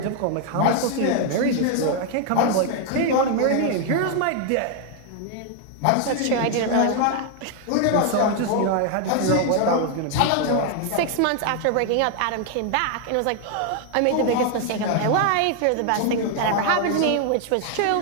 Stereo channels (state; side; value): different; both; correlation 0.00